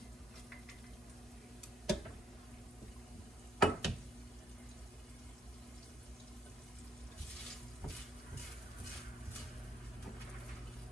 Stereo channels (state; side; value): normal; both; correlation 0.69